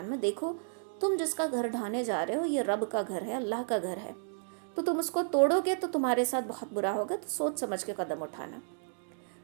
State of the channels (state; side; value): silent; left; digital silence